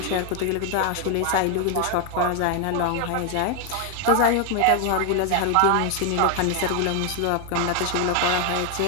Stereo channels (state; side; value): different; both; correlation 0.00